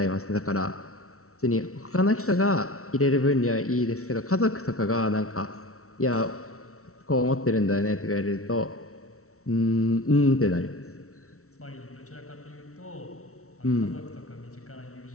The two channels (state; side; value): late; right; 0.64 ms